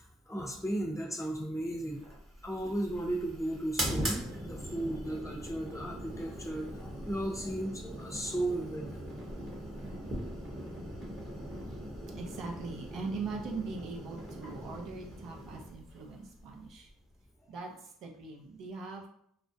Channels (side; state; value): both; normal; correlation 0.82